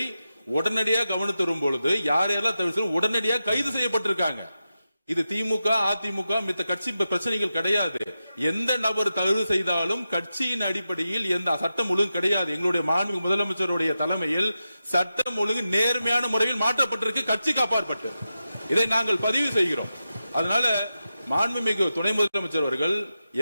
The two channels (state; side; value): inverted; both; correlation -0.91